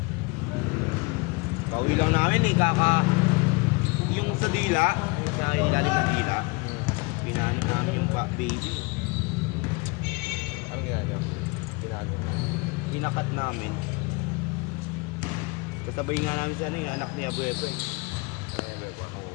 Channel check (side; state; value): right; quieter; 27.4 dB